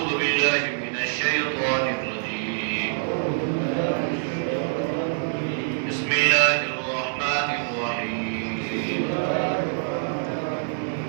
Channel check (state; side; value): silent; left; digital silence